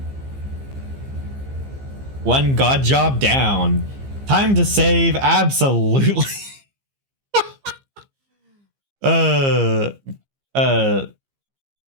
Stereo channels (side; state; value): left; late; 15 ms